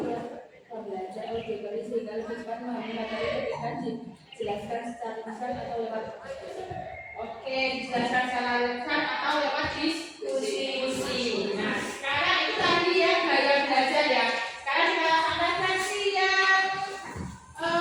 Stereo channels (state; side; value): identical; both; correlation 1.00